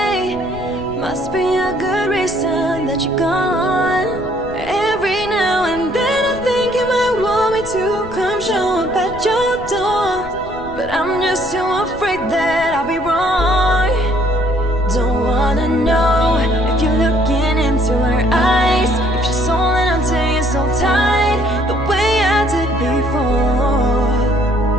Must be a good reason that you're gone. Every now and then I think you might want me to come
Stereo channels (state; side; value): noise; left; rumble, 15 dB below the sound